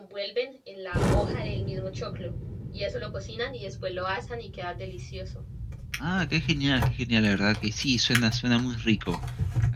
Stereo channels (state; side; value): identical; both; correlation 1.00